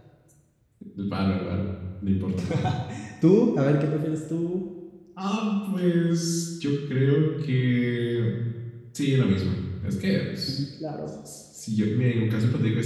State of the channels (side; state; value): both; identical; correlation 1.00